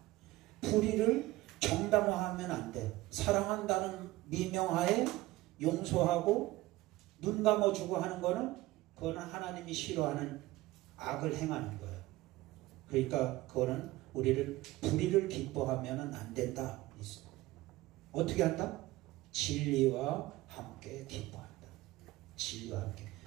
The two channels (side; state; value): left; quieter; 18.2 dB